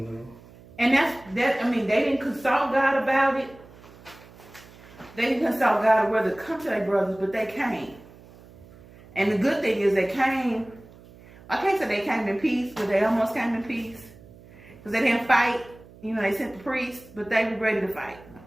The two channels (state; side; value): noise; right; hum, 22 dB below the sound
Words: that's I mean, they didn't consult God about it. They didn't consult God whether to come to their brothers, but they came. And the good thing is they came. I can't say they came in peace, but they almost came in peace because they didn't fight. They sent the priests, but they were ready to fight.